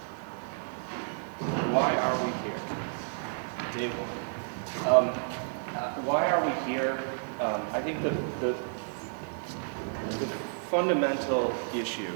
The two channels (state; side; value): silent; left; digital silence